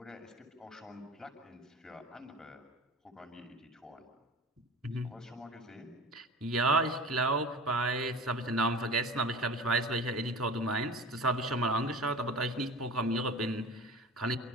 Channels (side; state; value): both; normal; correlation 0.36